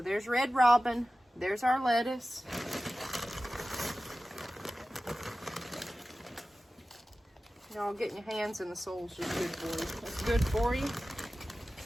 red robin. There's our lettuce. Y'all, getting your hands in the soil is just good for you. It's good for you.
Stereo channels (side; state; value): both; normal; correlation 0.95